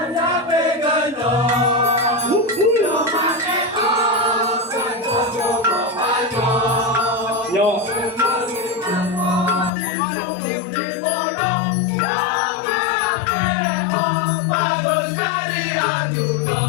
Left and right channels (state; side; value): drops out; right; at 9.7 s